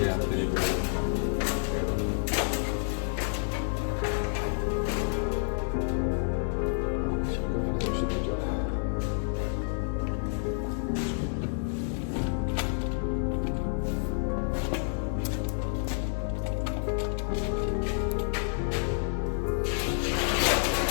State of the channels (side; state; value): right; silent; digital silence